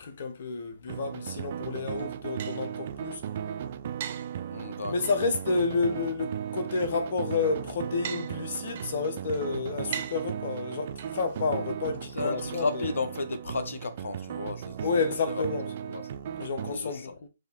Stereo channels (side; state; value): both; inverted; correlation -0.63